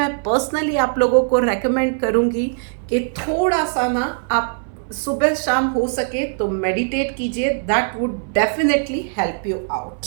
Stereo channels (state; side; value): silent; left; digital silence